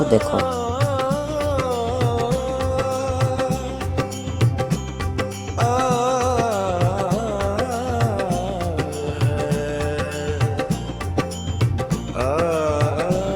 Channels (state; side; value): identical; both; correlation 1.00